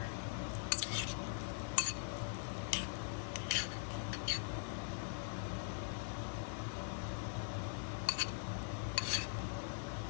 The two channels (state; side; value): silent; right; digital silence